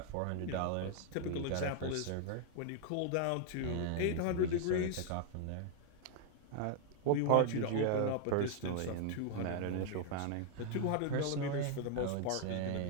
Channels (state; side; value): different; both; correlation 0.00